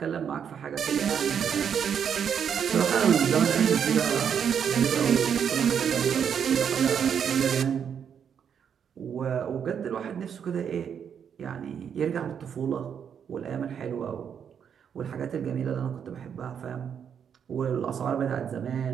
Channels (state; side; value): quieter; left; 7.8 dB